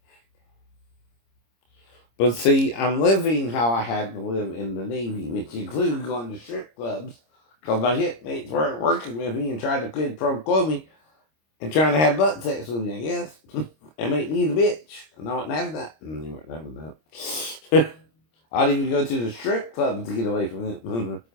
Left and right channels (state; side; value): late; right; 26 ms